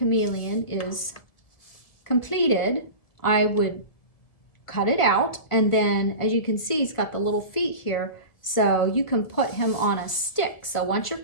is completed, I would cut it out, and then as you can see, he's got the little feet here, so you can put him on a stick. So once your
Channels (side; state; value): right; late; 1.9 ms